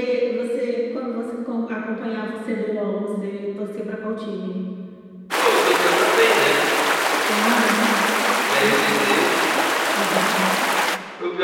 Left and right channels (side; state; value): both; identical; correlation 1.00